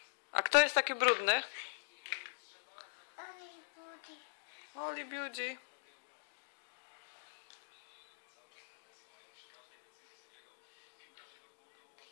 A kto jest taki brudny? Only booty. Oli Beauty.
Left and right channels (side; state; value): right; silent; digital silence